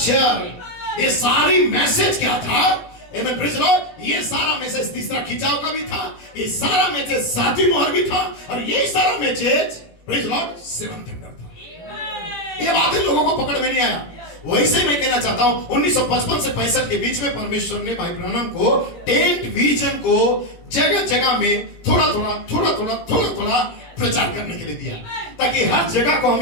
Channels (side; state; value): right; late; 17 ms